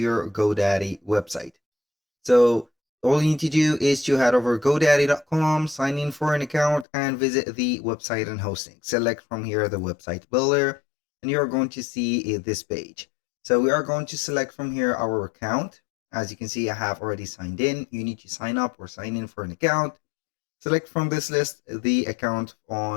GoDaddy website. So all you need to do is to head over godaddy.com, sign in for an account and visit the website and hosting. Select from here the website builder and you're going to see this page. So we are going to select from here our account. As you can see, I have already signed in. You need to sign up or sign in for an account. Select from this list the account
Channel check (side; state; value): right; drops out; at 6.9 s